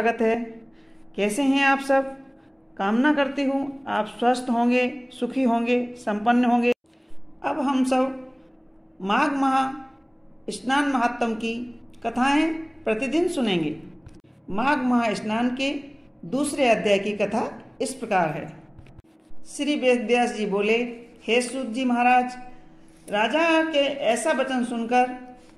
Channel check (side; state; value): both; identical; correlation 1.00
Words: है। कैसे हैं आप सब? कामना करती हूँ आप स्वस्थ होंगे, सुखी होंगे, संपन्न होंगे। अब हम सब माघ माह स्नान महात्म की कथाएं प्रतिदिन सुनेंगे। माघ माह स्नान के दूसरे अध्याय की कथा इस प्रकार है। श्री वेद व्यास जी बोले, हे सूत जी महाराज, राजा के ऐसा वचन सुनकर